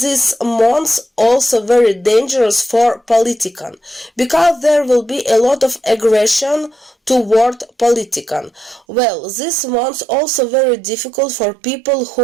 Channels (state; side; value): drops out; left; at 8.8 s